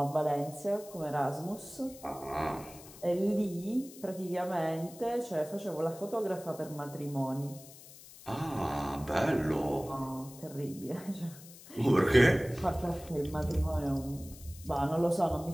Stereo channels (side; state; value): left; noise; hiss, 18 dB below the sound